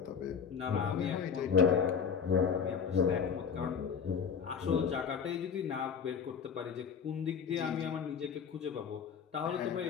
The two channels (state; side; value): quieter; right; 6.7 dB